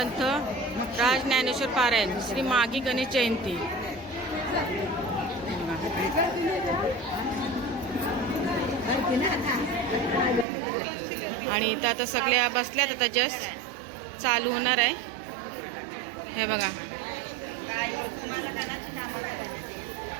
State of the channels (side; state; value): left; drops out; at 10.5 s